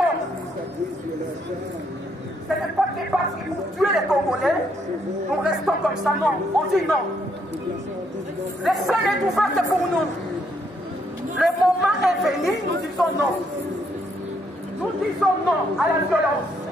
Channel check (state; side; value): normal; both; correlation 0.73